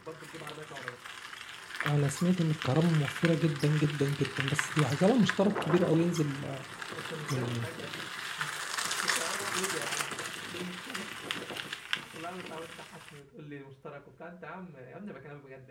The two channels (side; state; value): both; identical; correlation 1.00